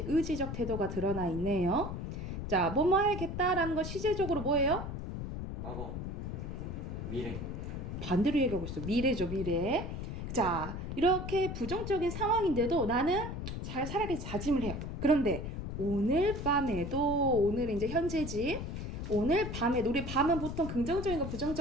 의지적 태도가 드러나 있네요. 자, 뭐뭐 해야겠다라는 거 시제적으로 뭐예요? 과거. 미래. 반대로 얘기하고 있어. 미래죠, 미래. 자, 이렇게 부정적인 상황인데도 나는 잘 살아야겠다 다짐을 해요. 그런데 오늘 밤에도, 오늘 이제 현재지, 오늘 밤에도, 우리 밤은 보통 긍정적인 거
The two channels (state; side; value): noise; left; rumble, 6 dB below the sound